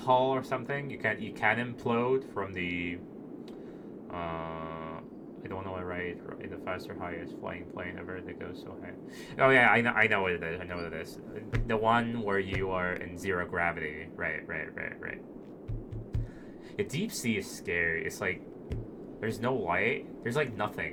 or something, you can implode from the. I don't know what right in the faster highest flying plane ever that goes so high. Oh yeah, I know what it is. I know what it is. The one where you are in zero gravity. Right. The deep sea is scary. It's like there's no light. There's like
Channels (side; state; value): both; identical; correlation 1.00